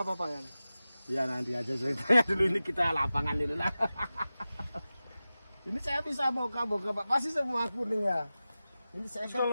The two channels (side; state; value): both; inverted; correlation -0.95